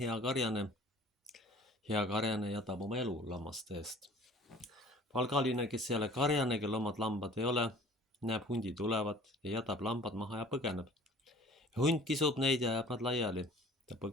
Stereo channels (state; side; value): normal; both; correlation 0.49